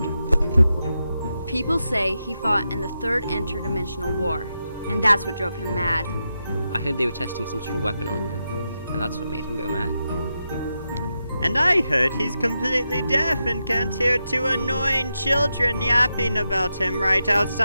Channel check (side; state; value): both; inverted; correlation -0.87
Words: People say he fought in the third interdimensional war, and that's what drove him mad. I heard they were testing some sort of weapon on him, and that's what made him go mad. And I heard he's completely deaf and can't hear two annoying children yapping about him right